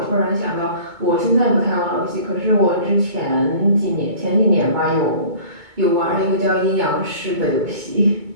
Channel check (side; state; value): left; late; 2.2 ms